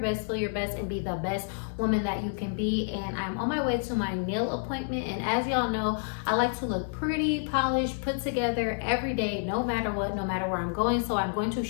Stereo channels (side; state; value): right; silent; 59 dB below the other